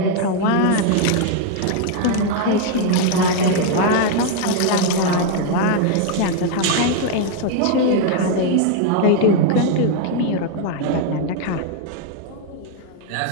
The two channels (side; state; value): both; different; correlation 0.00